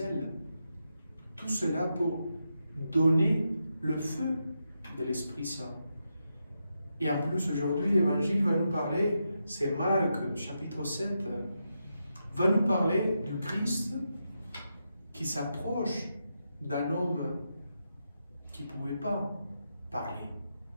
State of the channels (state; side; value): inverted; both; correlation -0.85